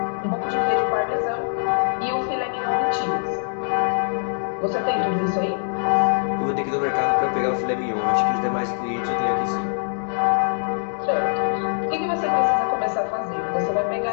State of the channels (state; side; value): silent; right; digital silence